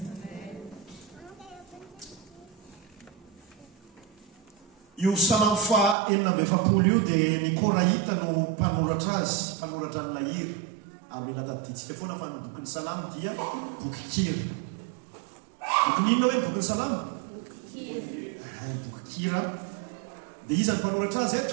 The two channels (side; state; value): left; drops out; at 6.0 s